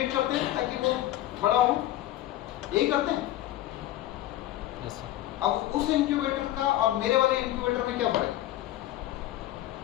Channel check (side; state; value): right; quieter; 14.4 dB